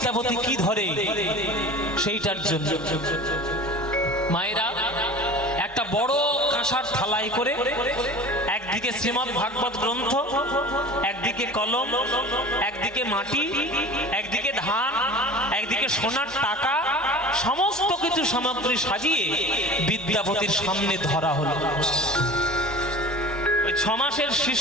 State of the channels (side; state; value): both; normal; correlation 0.39